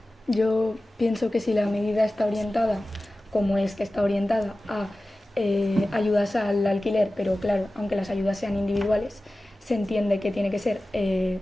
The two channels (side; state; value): both; normal; correlation 0.96